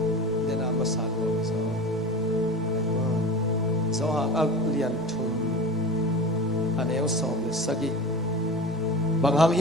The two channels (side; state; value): both; normal; correlation 0.32